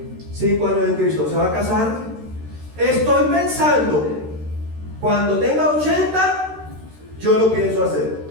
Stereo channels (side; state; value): left; late; 13 ms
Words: 5 años en Cristo se va a casar. Estoy pensando, cuando tenga 80, yo lo pienso hacer.